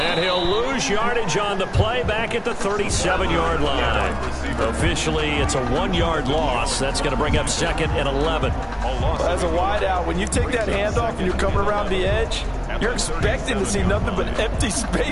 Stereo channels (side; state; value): both; identical; correlation 1.00